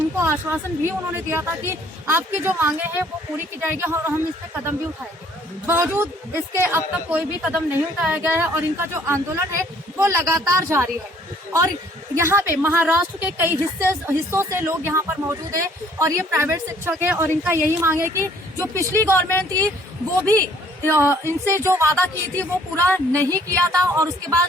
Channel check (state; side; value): normal; both; correlation 0.59